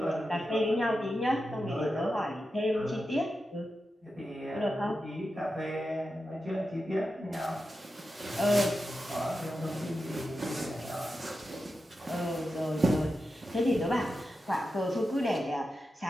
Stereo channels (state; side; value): normal; both; correlation 0.90